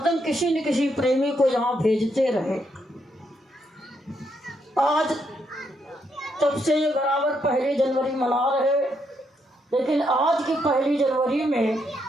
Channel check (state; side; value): normal; both; correlation 0.77